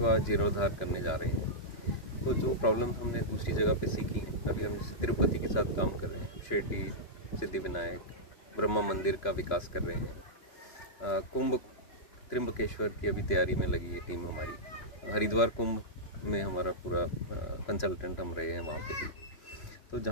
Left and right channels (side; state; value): right; late; 3.0 ms